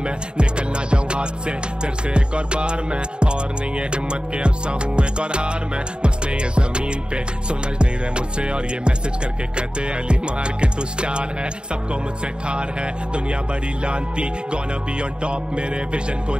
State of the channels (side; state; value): left; late; 0.050 ms